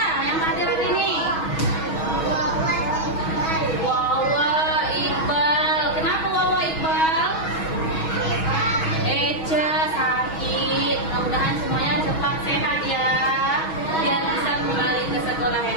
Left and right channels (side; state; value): right; late; 6.2 ms